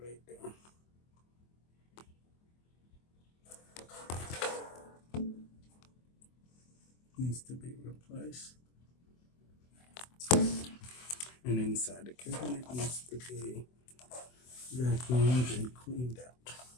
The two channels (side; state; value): right; late; 24 ms